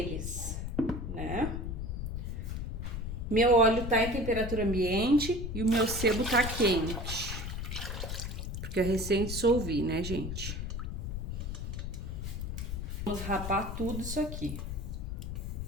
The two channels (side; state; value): left; noise; rumble, 4 dB below the sound